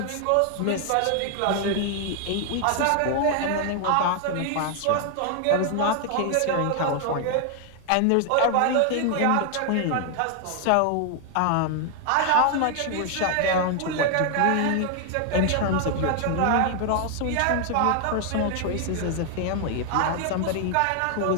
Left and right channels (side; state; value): both; different; correlation 0.00